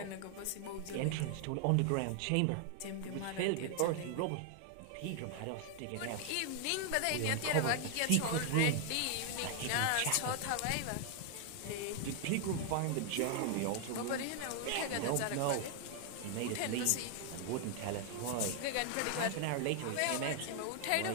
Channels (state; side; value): different; both; correlation 0.00